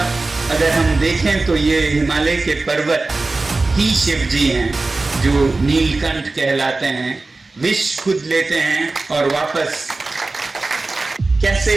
अगर हम देखें तो ये हिमालय के पर्वत ही शिव जी हैं, जो नीलकंठ कहलाते हैं, विष खुद लेते हैं और वापस कैसे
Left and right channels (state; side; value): quieter; left; 3.4 dB